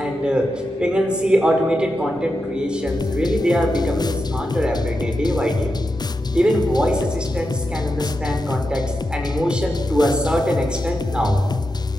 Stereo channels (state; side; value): normal; both; correlation 0.88